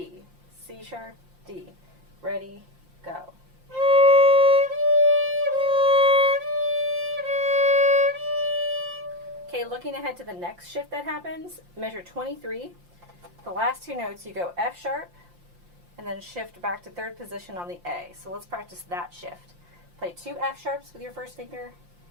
C sharp, D. Ready, go. Okay, looking ahead to the next shift that happens, measure 23. The last two notes, you go F sharp, and then shift back to third position on the A. So let's practice that shift. Play 2 F sharps with your first finger,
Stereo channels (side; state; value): left; late; 5.7 ms